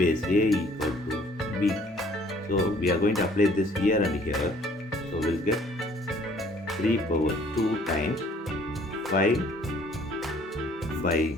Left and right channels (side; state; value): both; normal; correlation 0.58